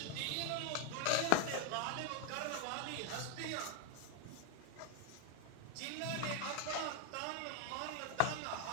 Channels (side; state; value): both; different; correlation 0.01